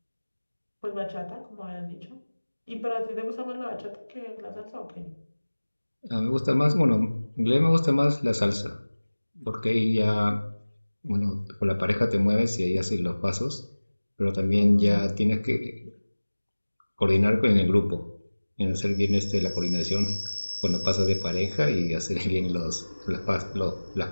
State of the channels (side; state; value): both; inverted; correlation -1.00